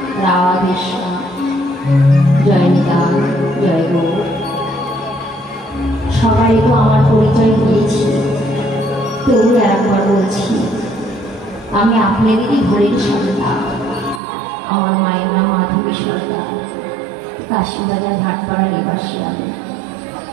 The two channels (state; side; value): drops out; left; at 14.2 s